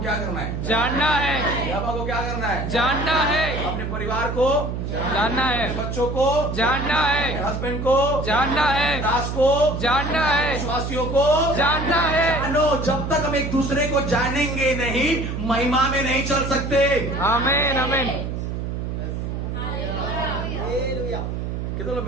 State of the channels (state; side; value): noise; right; hum, 4 dB below the sound